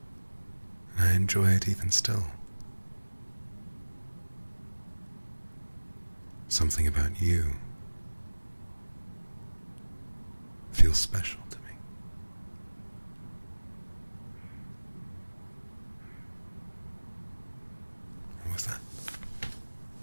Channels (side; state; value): both; inverted; correlation -1.00